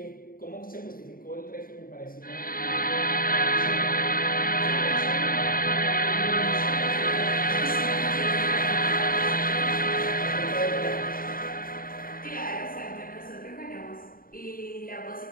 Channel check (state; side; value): late; right; 0.41 ms